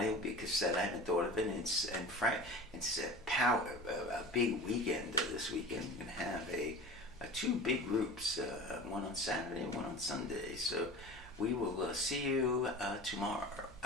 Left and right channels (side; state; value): both; normal; correlation 0.36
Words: will be a cassette. I haven't thought of it. It's a big weekend this weekend. We're going to have 2 big groups, one on Saturday and one on Sunday. So we will see you tomorrow.